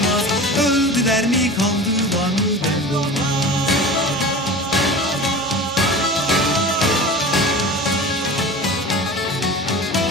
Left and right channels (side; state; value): both; normal; correlation 0.35